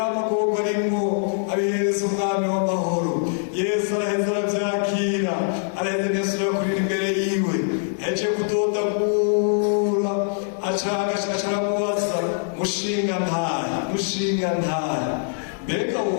arimo abihereza umwami w'amahoro. Yesu araheza arabyakira araheza Yesu yakurira imbere yiwe aje kudodagura acaramubaza mushinga ntara mbega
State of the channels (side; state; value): right; silent; 63 dB below the other